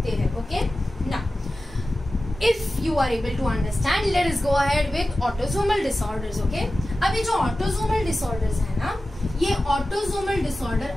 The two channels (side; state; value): both; normal; correlation 0.95